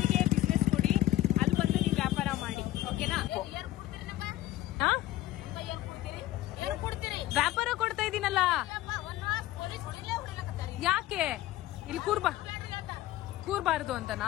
ಬಿಸ್ನೆಸ್ ಕೊಡಿ, ಅಲ್ಲಿ ಬಂದು ನೀವು ವ್ಯಾಪಾರ ಮಾಡಿ. ಓಕೆನಾ? ವ್ಯಾಪಾರ ಕೊಡ್ತಾ ಇದೀನಲ್ಲ, ಯಾಕೆ ಇಲ್ಲಿ ಕೂರ್ಬಾರ್ದು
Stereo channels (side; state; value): right; quieter; 14.9 dB